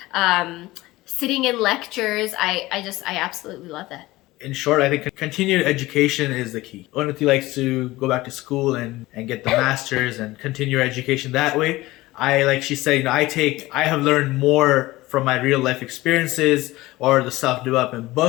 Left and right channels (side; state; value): right; quieter; 18.8 dB